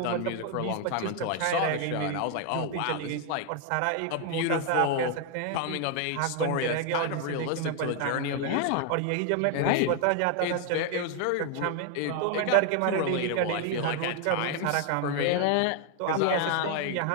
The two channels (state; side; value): different; both; correlation 0.00